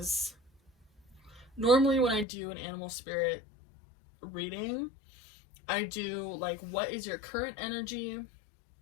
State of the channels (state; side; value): drops out; right; at 2.2 s